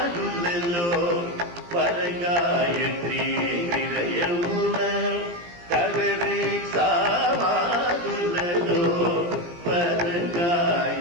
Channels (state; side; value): late; left; 17 ms